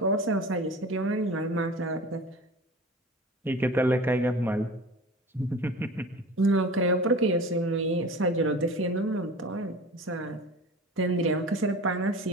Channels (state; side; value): normal; both; correlation 0.37